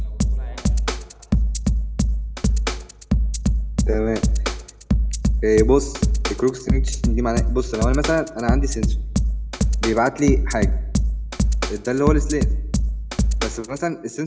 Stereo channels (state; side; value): identical; both; correlation 1.00